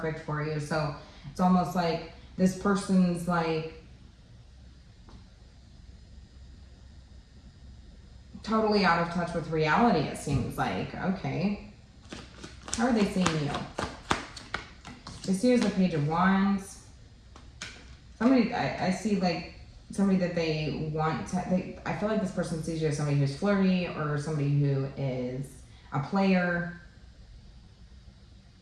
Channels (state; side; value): identical; both; correlation 1.00